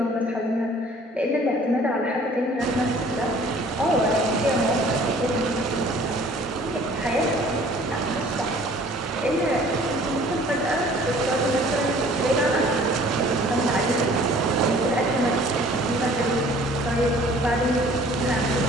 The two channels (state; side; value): normal; both; correlation 0.52